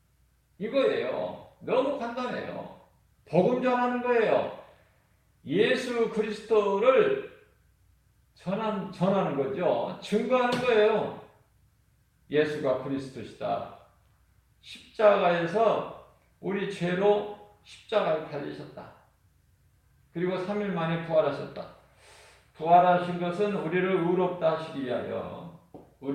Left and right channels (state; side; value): identical; both; correlation 1.00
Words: 이거예요. 너무 간단해요. 복음 전하는 거예요. 예수 그리스도를 전하는 거죠. 증거하는 거예요. 예수가 그리스도시다. 십자가에서 우리 죄로 십자가에 달리셨다. 그리고 3일 만에 부활하셨다. 부활하신 것은 우리를 의롭다 하시기 위하여,